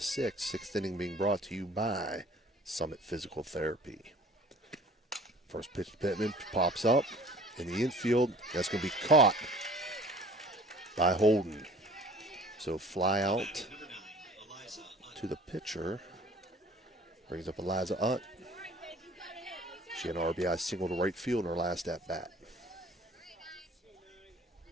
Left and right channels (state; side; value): normal; both; correlation 0.49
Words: 6th. 6th inning being brought to you by Summit Physical Therapy. First pitch to Pittman pops up in the infield. That's going to be caught by Holden. So fly out to the pitcher. Brings up Eliza Utt. She had an RBI single to right field in her last at-bat.